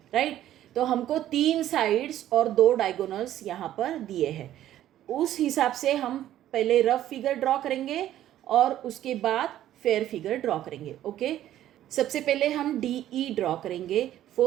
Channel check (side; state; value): left; quieter; 12.5 dB